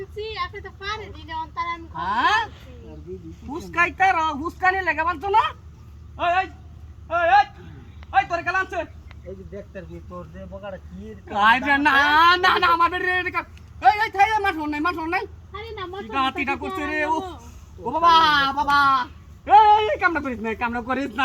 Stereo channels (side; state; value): both; identical; correlation 1.00